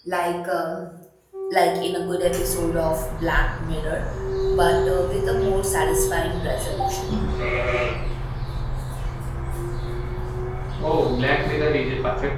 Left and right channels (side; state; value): both; identical; correlation 1.00